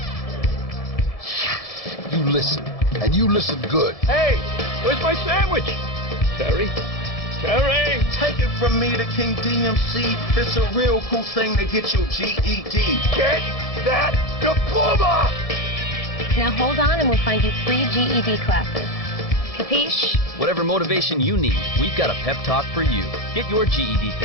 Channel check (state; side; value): late; right; 1.7 ms